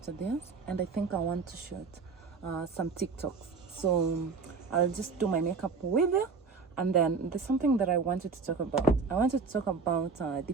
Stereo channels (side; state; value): left; quieter; 5.0 dB